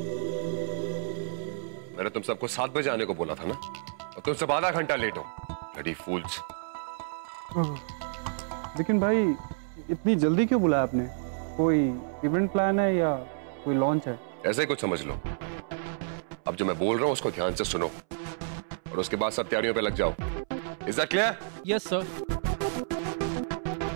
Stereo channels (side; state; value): left; silent; 58 dB below the other